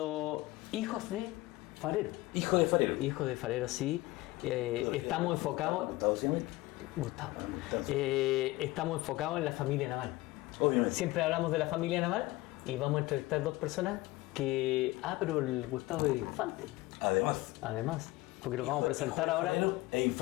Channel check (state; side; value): quieter; right; 19.5 dB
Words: hijos de farero. Hijo de farero. Hijos de farero, sí. Estamos enfocados... ¿Gustavo se llama? Gustavo. Gustavo. Estamos enfocados en la familia naval. Obviamente. Siempre hablamos de la familia naval y vamos a entrevistar dos personas que... Ah, pero el Gustavo es infante. Además, porque lo vamos a presentar ahora. E